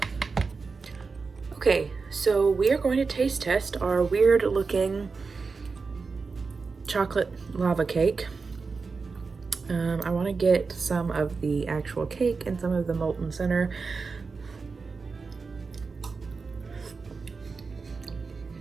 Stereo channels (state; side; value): quieter; left; 4.6 dB